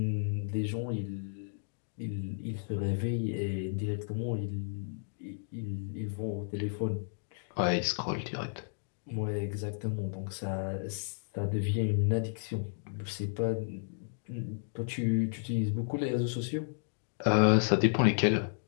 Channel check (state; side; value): silent; right; digital silence